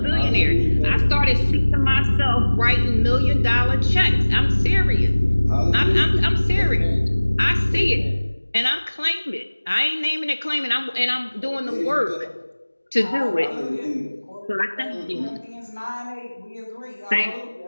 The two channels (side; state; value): both; inverted; correlation -1.00